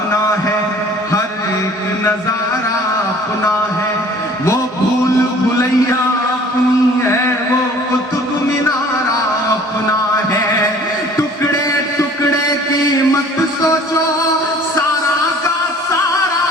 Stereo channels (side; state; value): both; normal; correlation 0.51